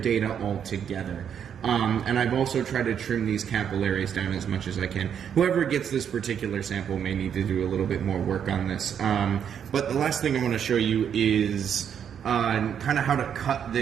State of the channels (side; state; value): left; quieter; 8.3 dB